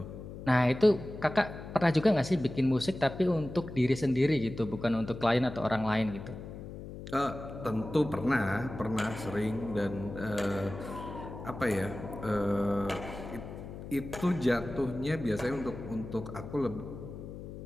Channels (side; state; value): left; noise; hum, 11 dB below the sound